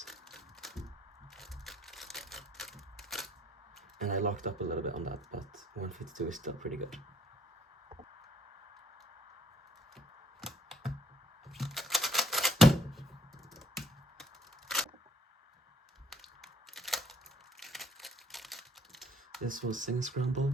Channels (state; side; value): normal; both; correlation 0.63